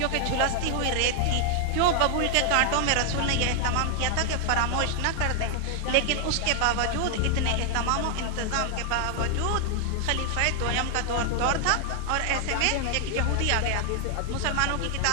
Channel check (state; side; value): different; both; correlation 0.00